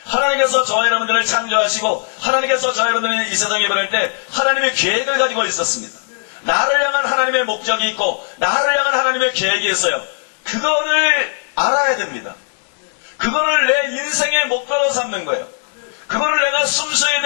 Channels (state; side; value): silent; right; digital silence